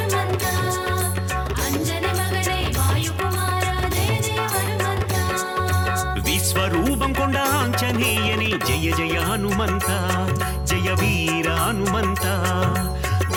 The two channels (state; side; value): identical; both; correlation 1.00